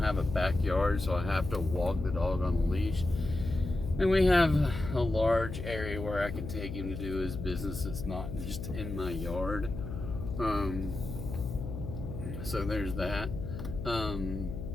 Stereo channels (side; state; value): left; noise; hum, 7 dB below the sound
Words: a backyard, so I have to walk the dog on a leash. And we have a large area where I can take him to do his business. It's not just in my yard. So there's that.